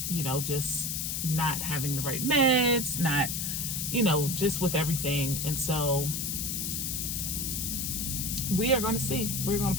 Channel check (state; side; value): noise; left; hiss, 1 dB below the sound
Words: you know, just not having the right meds, not, you know, just with everything. And so we are going to see. We're going